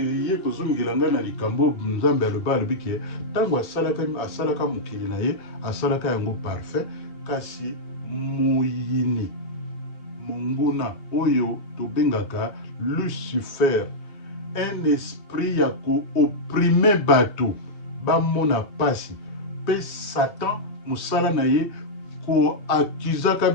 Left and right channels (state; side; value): late; right; 3.2 ms